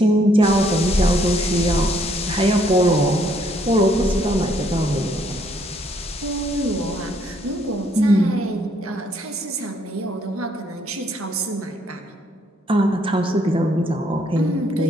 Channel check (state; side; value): normal; both; correlation 0.68